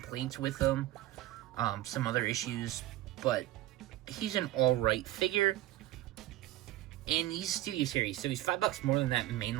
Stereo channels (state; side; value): quieter; left; 15.3 dB